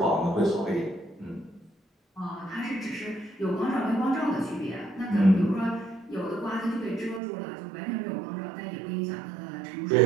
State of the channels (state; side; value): drops out; left; at 7.2 s